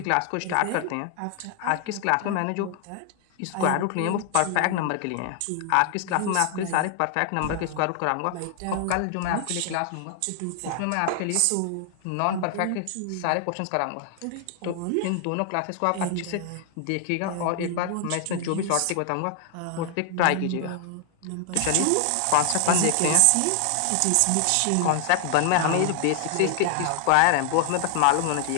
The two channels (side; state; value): both; different; correlation 0.00